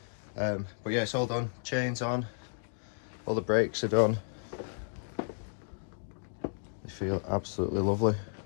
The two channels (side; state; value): right; silent; digital silence